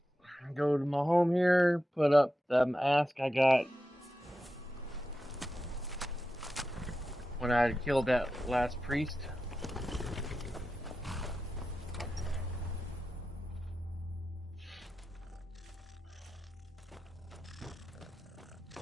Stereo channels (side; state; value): both; normal; correlation 0.91